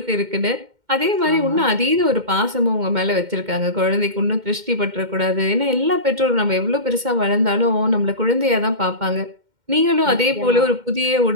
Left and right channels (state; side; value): late; left; 2.1 ms